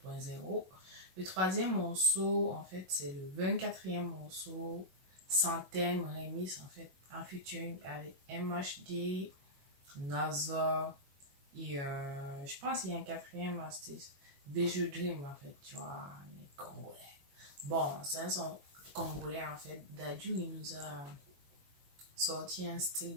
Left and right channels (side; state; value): left; late; 21 ms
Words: Le troisième morceau, en fait, c'est le 24e morceau, sans thème, remix, en fait, en featuring avec MHD, Nazar, et je pense qu'il y a un quatrième artiste, Visual Dream, en fait, tu vois, les Congolais. Bon, c'est un son congolais, en fait. Dadju, il nous a sorti un style